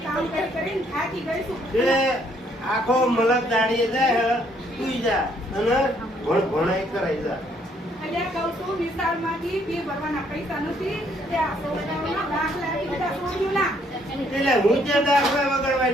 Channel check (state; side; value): normal; both; correlation 0.67